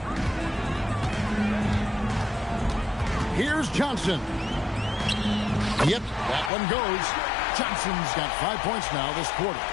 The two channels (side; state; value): right; drops out; at 6.5 s